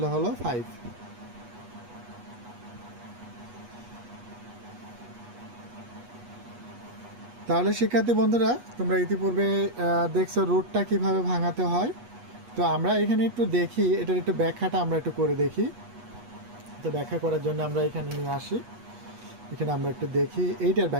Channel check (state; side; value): late; left; 8.3 ms